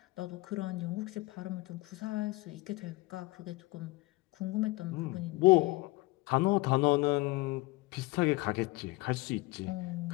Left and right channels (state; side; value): quieter; right; 21.4 dB